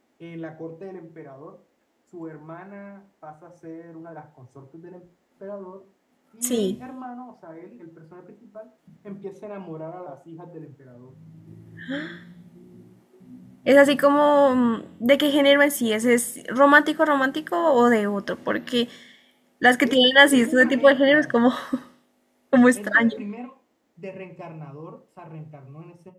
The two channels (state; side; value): identical; both; correlation 1.00